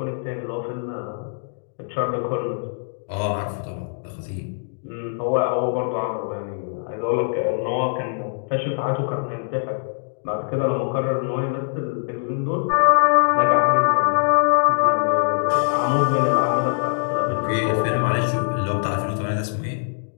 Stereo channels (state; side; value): silent; right; digital silence